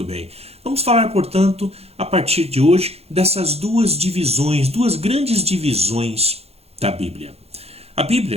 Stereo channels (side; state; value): left; late; 0.29 ms